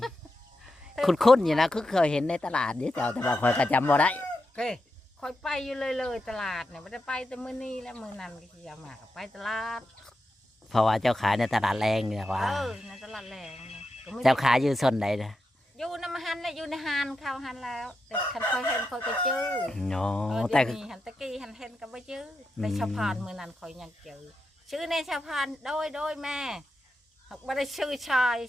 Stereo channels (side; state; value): both; normal; correlation 0.88